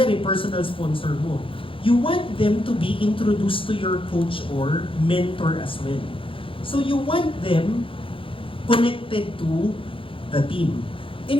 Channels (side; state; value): right; late; 0.25 ms